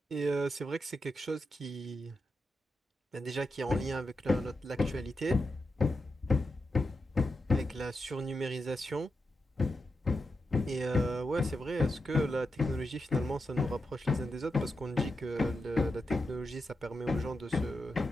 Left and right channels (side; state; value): both; normal; correlation 0.87